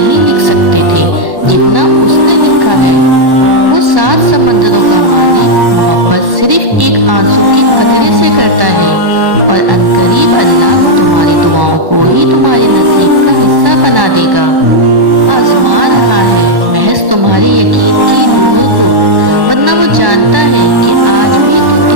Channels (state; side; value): late; left; 1.1 ms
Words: لکھ سکتے تھے جتنا اس نے لکھا ہے۔ وہ 7 سمندروں کا مالک محبت صرف ایک آنسو کے قطرے سے کرتا ہے، اور عنقریب اللہ تمہاری دعاؤں کو ہی تمہارے نصیب کا حصہ بنا دے گا۔ آزما رہا ہے محض تمہارے یقین کی ڈور کو، ورنہ وہ جانتا ہے کہ آج بھی تم